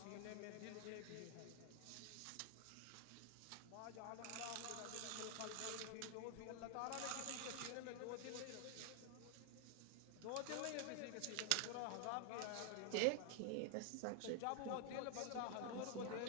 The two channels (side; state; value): both; different; correlation 0.00